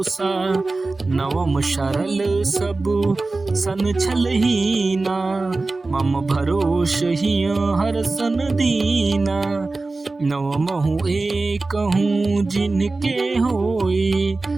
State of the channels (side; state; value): left; quieter; 3.4 dB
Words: नवम सरल सब सन छलहीना, मम भरोस हिय हर सन दीना। नवमहु एक हूँ जिनके होई,